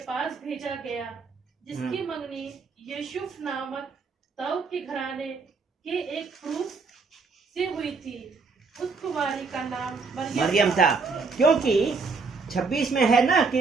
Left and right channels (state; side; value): quieter; left; 4.5 dB